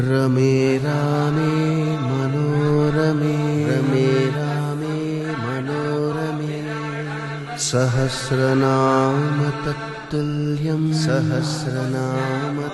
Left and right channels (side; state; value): both; identical; correlation 1.00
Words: रमे रामे मनोरमे रमे रामे मनोरमे सहस्रनाम तत्तुल्यं सहस्रनाम